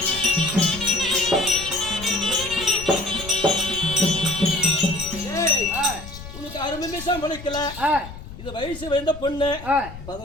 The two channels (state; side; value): noise; left; rumble, 13 dB below the sound